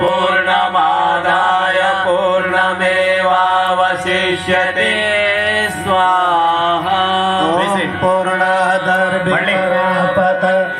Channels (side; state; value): both; identical; correlation 1.00